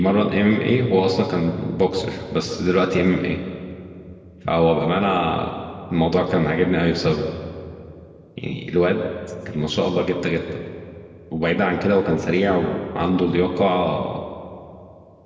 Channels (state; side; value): identical; both; correlation 1.00